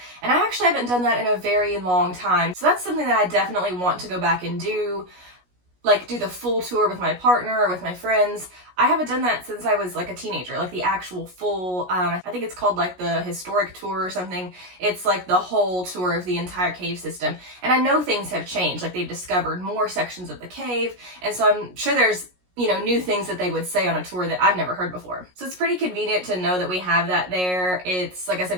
and I actually haven't done that in a very long time. So that's something that I definitely want to go back and do, like do the full tour with my partner or with my friends. I haven't done that since I was like a teenager, like the actual full, I think it's called like the historic tour or something. It's like the whole tour of the entire cave system. And I know things have changed, like they've discovered more sections of the cave. And so I'm sure there's, new things that they would say on a tour that I've never heard before. So it's pretty convenient to know that we have that there. It's, like I said,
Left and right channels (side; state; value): left; late; 16 ms